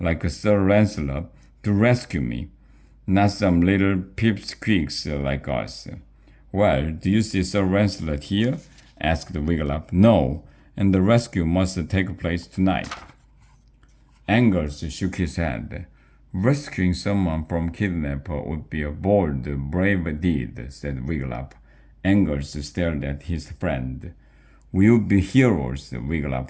Sir Lancelot to rescue me, not some little pipsqueaks like us. Well, do you see Sir Lancelot here? Asked Wiglaf. No, and the rescue must take place tonight. Angus shook his head. Rescuing someone from kidnapper would be a bold, brave deed, said Wiglaf. Angus stared at his friend. We'll be heroes, Wiglaf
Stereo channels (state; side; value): identical; both; correlation 1.00